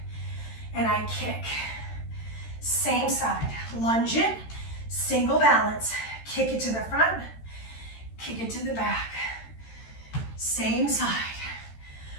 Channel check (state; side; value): late; right; 13 ms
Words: and I kick. Same side. Lunge it, single balance. Kick it to the front, kick it to the back. Same side.